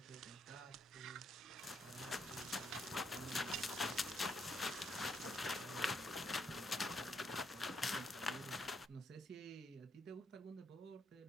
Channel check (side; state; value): both; normal; correlation 0.76